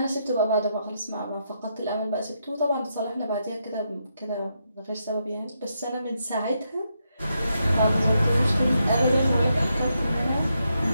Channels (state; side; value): inverted; both; correlation -0.81